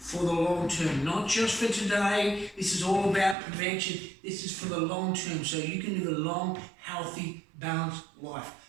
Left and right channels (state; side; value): drops out; left; at 3.4 s